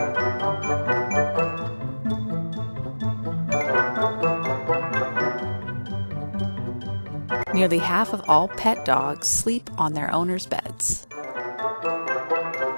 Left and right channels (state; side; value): inverted; both; correlation -1.00